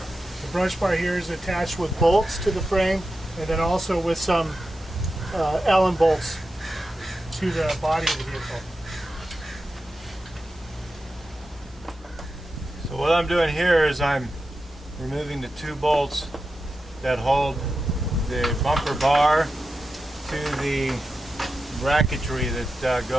The brush bar here is attached with bolts to the frame, and then also with some Allen bolts to the body of the vehicle. So what I'm doing here is I'm removing the 2 bolts that hold the bumper bar to the bracketry that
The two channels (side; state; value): both; normal; correlation 0.90